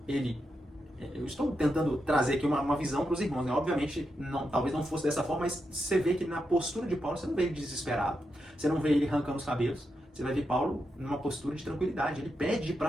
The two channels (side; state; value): both; normal; correlation 0.85